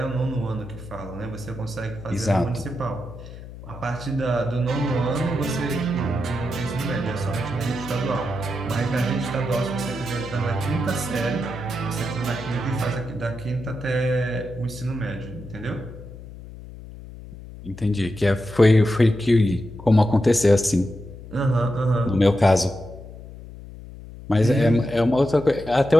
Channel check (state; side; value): noise; left; hum, 15 dB below the sound